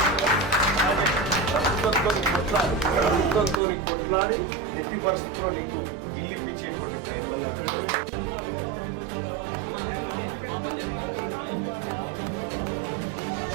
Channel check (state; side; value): drops out; left; at 3.6 s